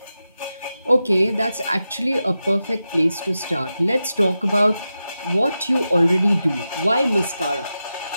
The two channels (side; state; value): both; inverted; correlation -0.91